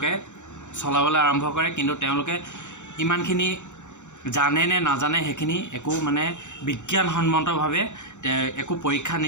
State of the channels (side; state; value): right; late; 0.84 ms